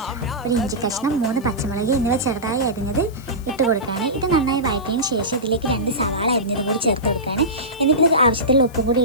ഒരു ഇഞ്ചി കഷ്ണം, 3 പച്ചമുളക് എന്നിവ ചെറുതായി അരിഞ്ഞത് ഇട്ട് കൊടുക്കുകയാണ്. ഇത് നന്നായി വഴറ്റിയതിന് ശേഷം ഇതിലേക്ക് 2 സവാള അരിഞ്ഞതും കൂടി ചേർത്ത് കൊടുക്കുകയാണ്. എന്നിട്ട് ഇത് ആവശ്യത്തിലുള്ള ഉപ്പും കൂടി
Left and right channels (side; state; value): left; noise; hiss, 24 dB below the sound